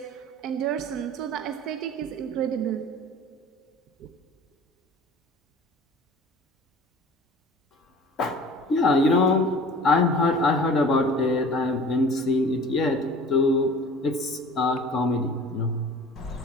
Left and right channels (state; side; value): normal; both; correlation 0.43